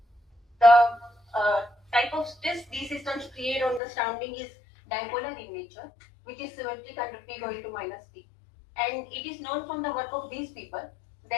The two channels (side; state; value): right; drops out; at 3.8 s